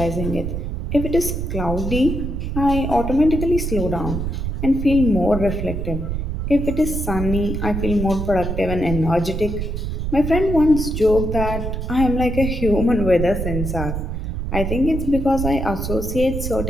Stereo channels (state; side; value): noise; right; rumble, 3 dB below the sound